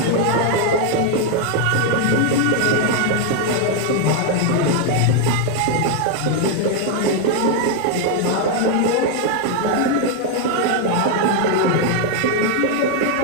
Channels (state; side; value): different; both; correlation 0.00